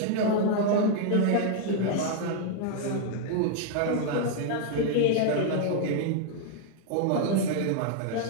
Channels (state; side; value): different; both; correlation 0.00